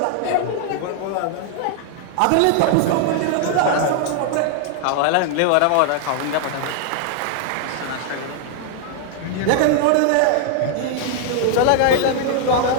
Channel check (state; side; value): different; both; correlation 0.00